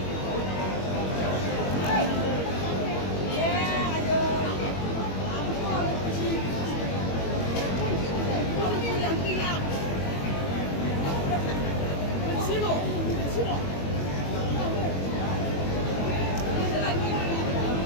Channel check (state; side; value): late; right; 21 ms